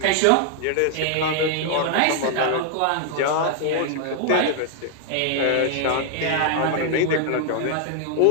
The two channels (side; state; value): both; different; correlation 0.00